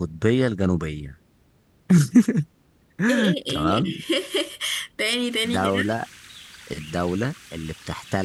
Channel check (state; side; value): identical; both; correlation 1.00